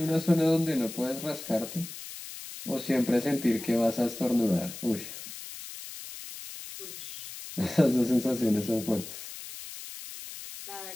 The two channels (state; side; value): noise; left; hiss, 11 dB below the sound